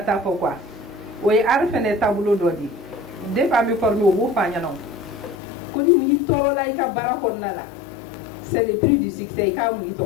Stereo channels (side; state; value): right; drops out; at 5.4 s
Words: fɔ quoi o ye art fɛnɛ taabolo dɔ di depuis an bɛ former o b'o fɔ an ɲɛna ko ni mun y'i tɔɔrɔ la i ka baara kɔnɔna la c'est le prix du succès i k'a mun i